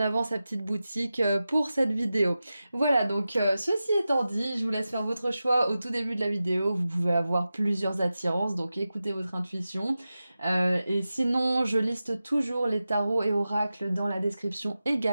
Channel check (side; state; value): both; inverted; correlation -0.93